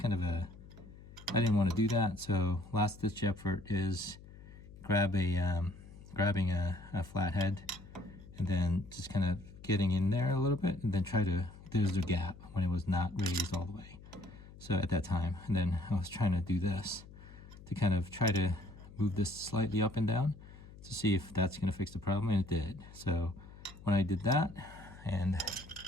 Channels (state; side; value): noise; left; hum, 18 dB below the sound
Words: of I didn't want to do that. So last ditch effort is grabbing a flathead and then just kind of getting in there a little bit, and then there's the gap when it was not raised all the way. So at that time, and then I was trying to do this to kind of try to move this slightly up and down to see if that's going to fix the problem, and it did. So when I did that and